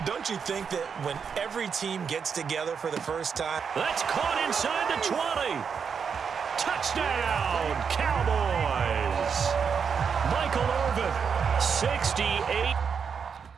Don't you think that when every team gets together for the first time? That's caught inside the 20. Touchdown, Cowboys. Michael Irvin, 68.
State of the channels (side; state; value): left; quieter; 6.4 dB